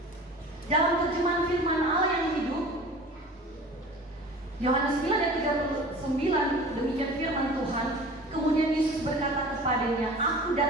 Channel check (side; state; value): both; normal; correlation 0.41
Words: Dalam terjemahan firman Allah yang hidup, Yohanes 9 ayat 39, demikian firman Tuhan. Kemudian Yesus berkata kepadanya, aku